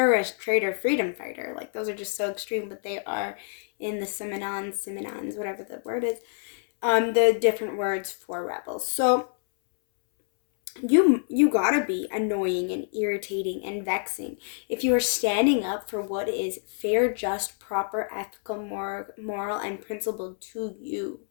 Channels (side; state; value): right; silent; 60 dB below the other